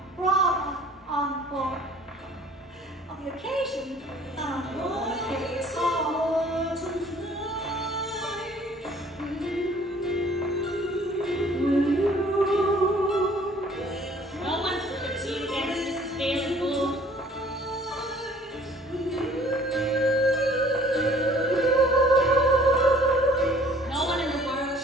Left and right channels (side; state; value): both; normal; correlation 0.54